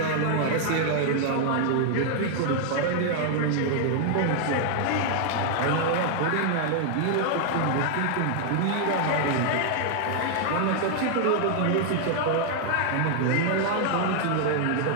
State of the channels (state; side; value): different; both; correlation 0.00